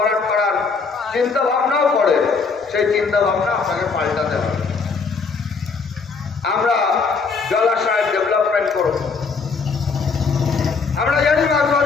করার চিন্তা ভাবনাও করে, সেই চিন্তা ভাবনা আপনাকে পাল্টাতে হবে। আমরা জলাশয়ের ডেভেলপমেন্ট করব। আমরা জানি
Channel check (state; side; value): quieter; right; 4.9 dB